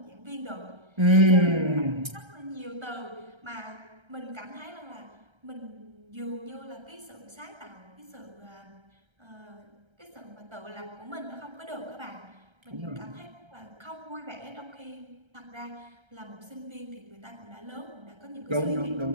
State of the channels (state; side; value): late; left; 1.3 ms